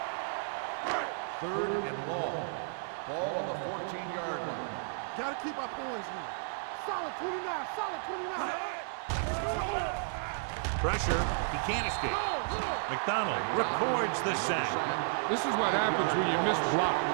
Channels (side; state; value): left; silent; digital silence